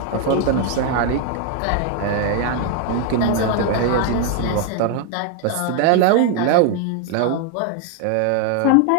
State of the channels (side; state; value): both; different; correlation 0.00